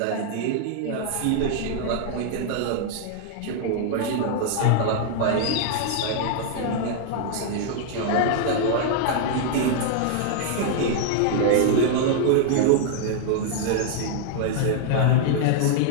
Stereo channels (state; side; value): different; both; correlation -0.01